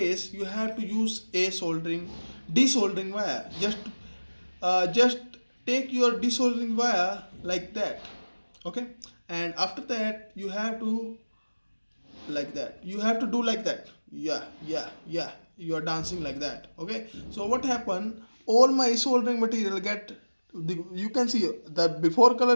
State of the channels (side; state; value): both; inverted; correlation -1.00